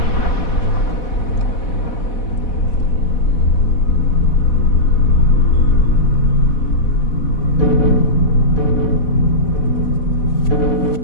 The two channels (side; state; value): right; late; 4.1 ms